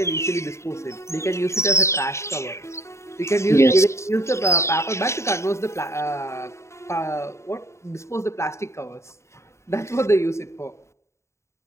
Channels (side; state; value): right; late; 0.14 ms